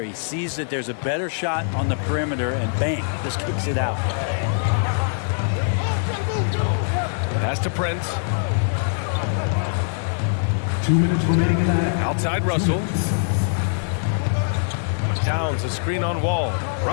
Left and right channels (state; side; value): silent; right; digital silence